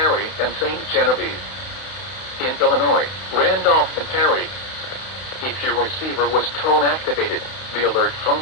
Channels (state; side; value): late; right; 31 ms